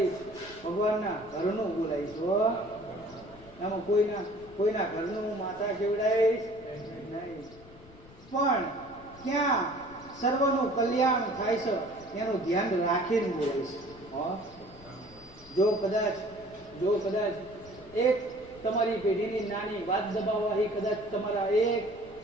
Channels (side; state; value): left; noise; rumble, 22 dB below the sound